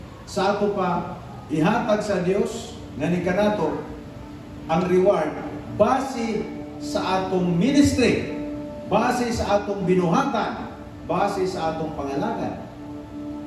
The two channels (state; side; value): identical; both; correlation 1.00